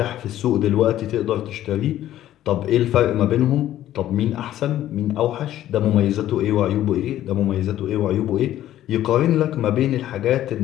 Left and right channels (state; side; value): quieter; right; 12.9 dB